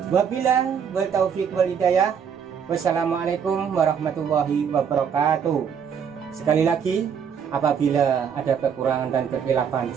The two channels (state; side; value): quieter; left; 7.4 dB